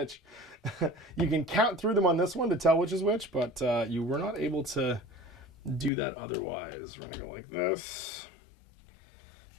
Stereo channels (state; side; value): drops out; right; at 5.9 s